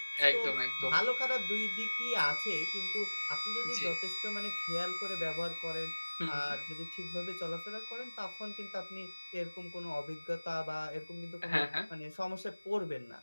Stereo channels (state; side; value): inverted; both; correlation -1.00